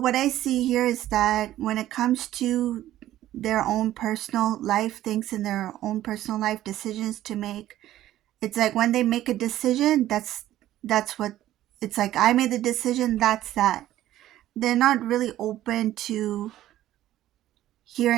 I see here is that when it comes to their own personal life things and their own personal life decisions to make, it's like when they make a decision, that's what it's like. I made the decision, that's that. They're not really open to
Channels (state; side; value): quieter; left; 13.6 dB